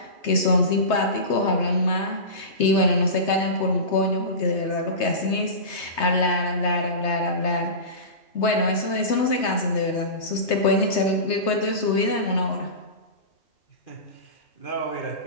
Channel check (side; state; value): right; late; 3.2 ms